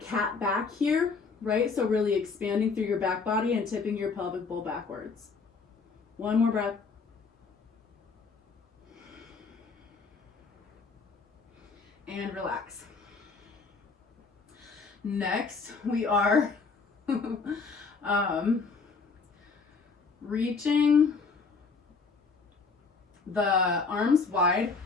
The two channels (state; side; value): quieter; right; 4.6 dB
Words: back here, right? So really expanding through your back body and tipping your pelvic bowl backwards. One more breath. And relax. Next, we are reaching the arms wide